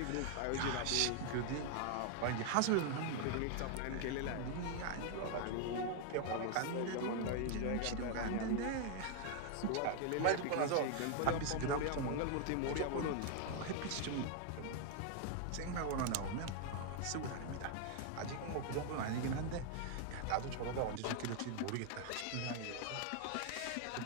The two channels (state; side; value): different; both; correlation 0.00